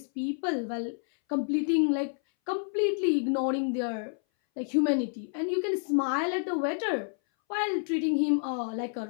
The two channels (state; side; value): silent; right; 59 dB below the other